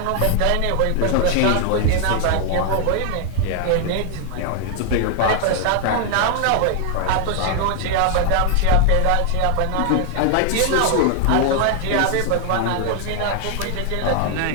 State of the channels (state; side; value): different; both; correlation 0.00